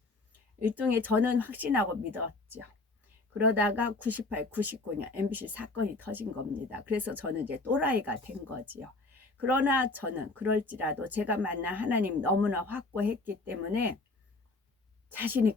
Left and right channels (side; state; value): right; quieter; 3.2 dB